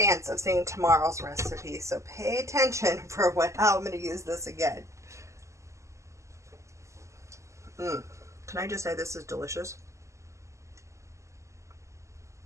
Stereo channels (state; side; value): late; left; 0.14 ms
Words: of seeing tomorrow's recipe. So pay attention for how I'm going to use this again. Can I just say this is delicious?